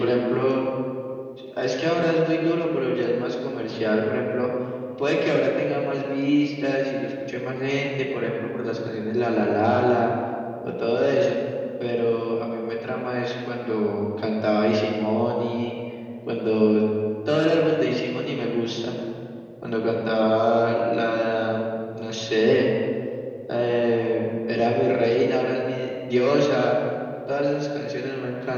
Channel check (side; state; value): both; identical; correlation 1.00